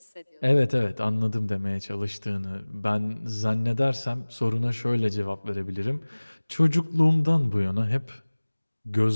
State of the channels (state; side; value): inverted; both; correlation -1.00